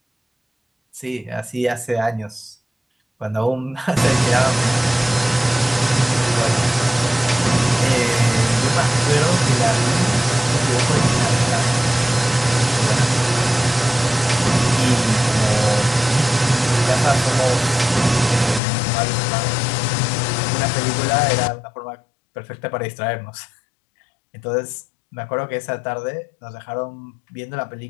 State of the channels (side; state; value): right; drops out; at 18.6 s